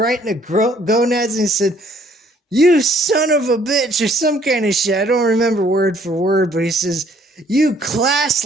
in the gonads, and he said, "You son of a bitch," or some kind of shit. I don't remember word for word, but he says, "You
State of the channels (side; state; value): both; normal; correlation 0.62